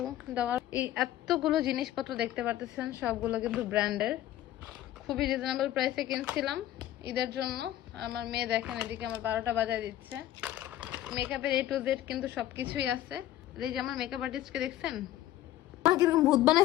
দাও। এই এতগুলো জিনিসপত্র দেখতে পারতেছেন, সবগুলো কিন্তু ব্র্যান্ডের, খুবই রিজনেবল প্রাইসে কিনছিলাম ঈদের জন্য। আমার মেয়ে দেখেন এদিকে আমার 12টা বাজায় দিচ্ছে। মেকআপের A to Z কিন্তু সবকিছুই আছে। এই যে আমার মেকআপ আর্টিস্টকে দেখছেন, কিরকম ভূত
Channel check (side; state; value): right; quieter; 13.3 dB